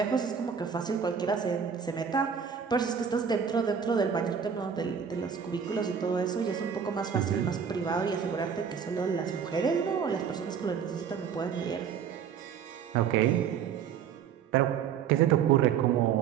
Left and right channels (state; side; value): quieter; left; 7.4 dB